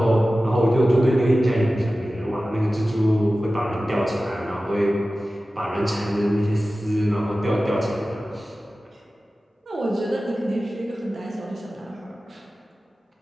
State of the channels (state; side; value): normal; both; correlation 0.95